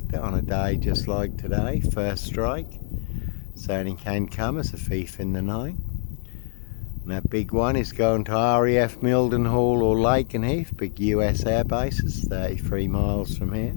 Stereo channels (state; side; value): silent; right; digital silence